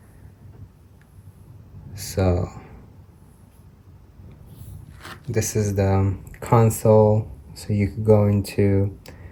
so this is the console. So you could go into,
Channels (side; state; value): both; identical; correlation 1.00